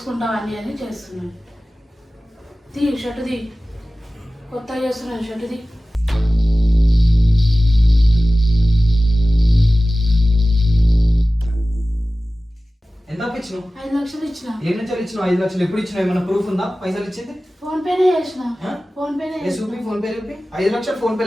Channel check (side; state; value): both; normal; correlation 0.96